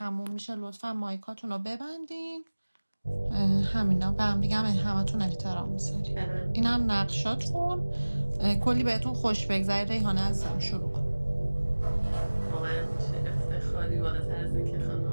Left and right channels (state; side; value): inverted; both; correlation -1.00